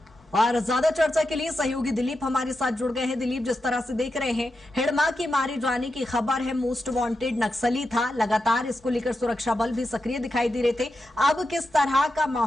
और ज्यादा चर्चा के लिए सहयोगी दिलीप हमारे साथ जुड़ गए हैं। दिलीप, जिस तरह से देख रहे हैं हिड़मा के मारे जाने की खबर है, मोस्ट वांटेड नक्सली था, लगातार इसको लेकर सुरक्षा बल भी सक्रिय दिखाई दे रहे थे। अब किस तरह का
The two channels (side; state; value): both; normal; correlation 0.88